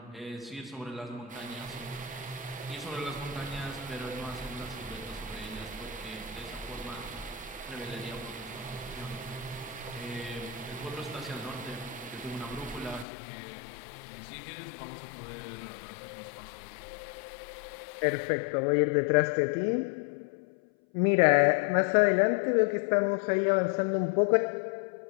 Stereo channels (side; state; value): right; drops out; at 13.1 s